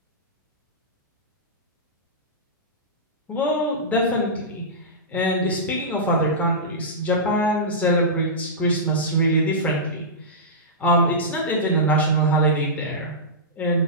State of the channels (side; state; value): both; normal; correlation -0.16